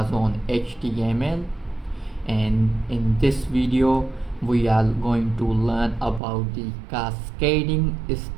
on HTML, and in this video we are going to learn about the cascading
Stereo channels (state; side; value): drops out; left; at 6.2 s